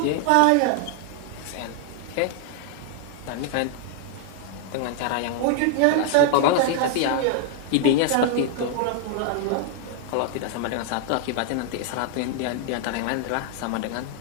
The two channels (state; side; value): different; both; correlation 0.00